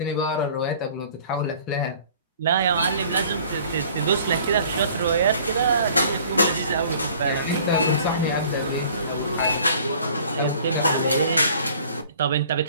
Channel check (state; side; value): inverted; both; correlation -0.52